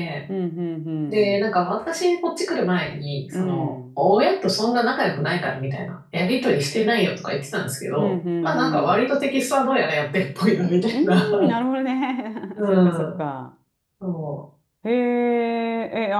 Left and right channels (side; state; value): both; identical; correlation 1.00